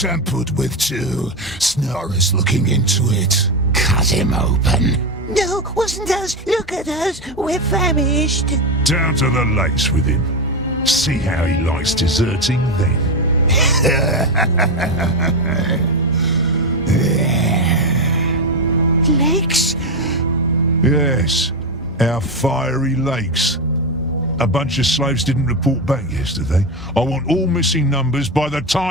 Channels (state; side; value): normal; both; correlation 0.12